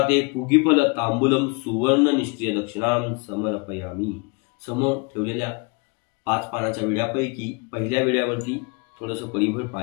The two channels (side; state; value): right; quieter; 30.4 dB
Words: पुगिफल तांबूलम सुवर्ण निष्क्रिय दक्षिणाम समर्पयामी. समोर ठेवलेल्या 5 पानाच्या विड्यापैकी पहिल्या विड्यावरती थोडंसं परिभर